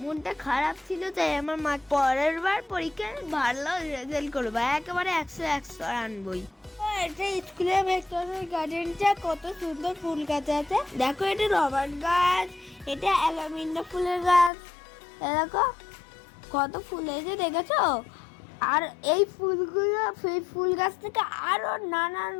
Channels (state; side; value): drops out; right; at 14.5 s